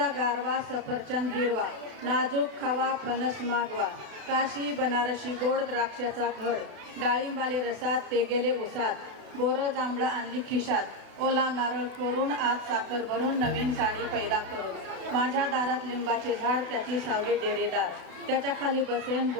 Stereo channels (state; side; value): late; left; 32 ms